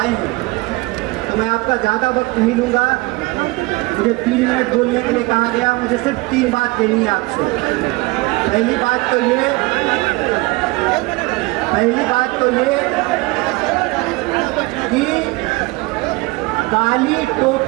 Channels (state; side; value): quieter; left; 23.0 dB